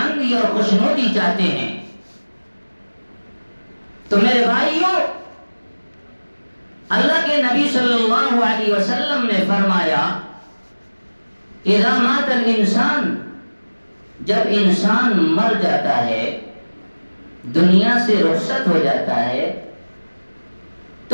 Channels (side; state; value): both; inverted; correlation -1.00